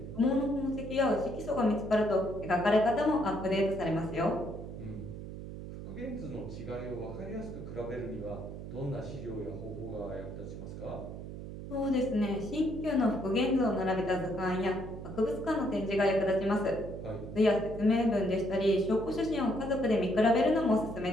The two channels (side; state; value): right; noise; hum, 10 dB below the sound